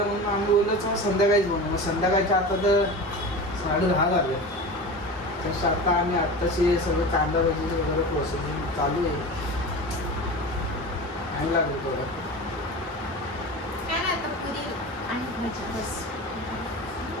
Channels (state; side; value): normal; both; correlation 0.31